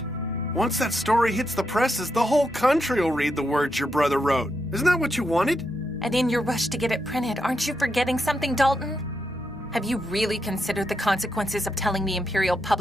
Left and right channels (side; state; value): both; normal; correlation 0.83